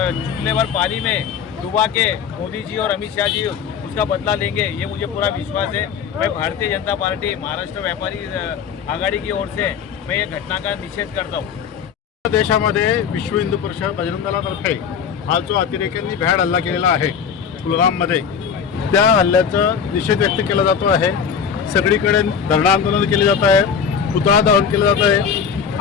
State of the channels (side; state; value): right; quieter; 7.0 dB